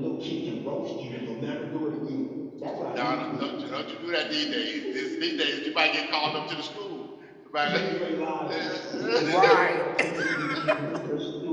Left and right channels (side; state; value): both; identical; correlation 1.00